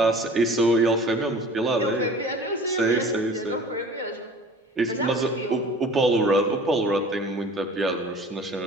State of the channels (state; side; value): normal; both; correlation 0.44